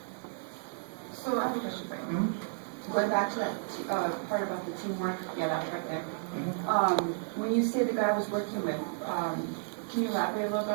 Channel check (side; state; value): left; silent; digital silence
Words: So I have a question for you. Going back to that part about the teamwork, yeah, that's right there. When you say the guy I was working with, can you elaborate a little bit